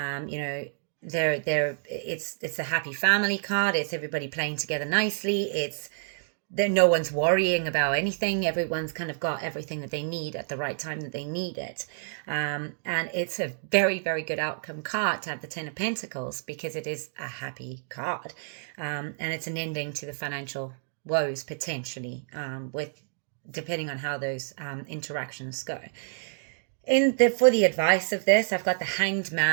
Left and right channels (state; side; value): silent; left; digital silence